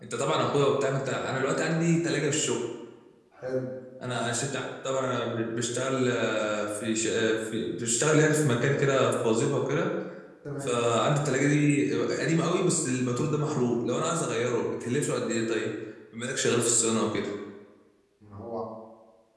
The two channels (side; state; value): both; identical; correlation 1.00